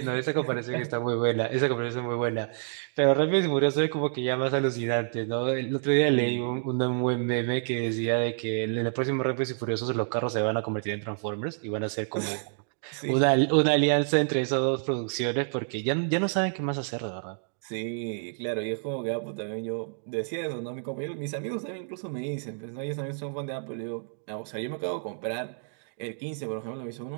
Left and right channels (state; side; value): silent; left; digital silence